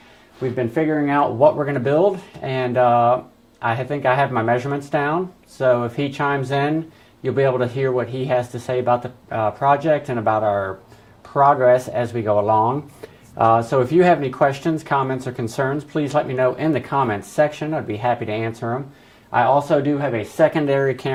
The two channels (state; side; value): identical; both; correlation 1.00